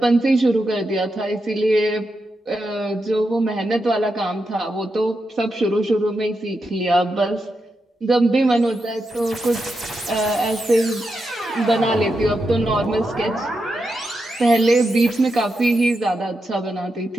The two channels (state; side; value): normal; both; correlation 0.86